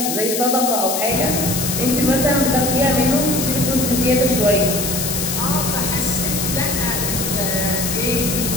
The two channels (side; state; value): left; noise; hiss, 2 dB below the sound